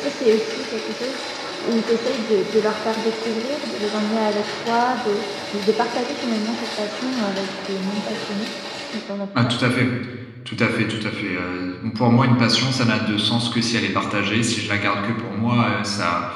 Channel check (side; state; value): both; identical; correlation 1.00